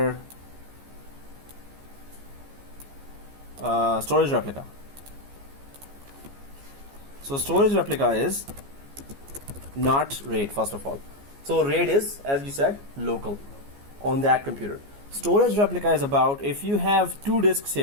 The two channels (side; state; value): left; late; 14 ms